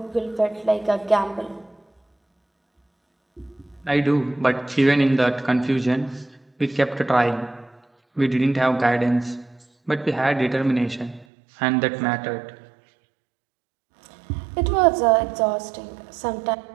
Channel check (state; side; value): drops out; left; at 11.2 s